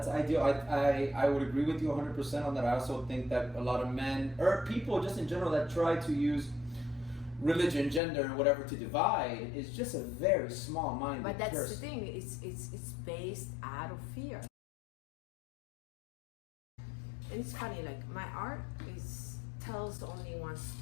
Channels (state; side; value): drops out; right; at 8.0 s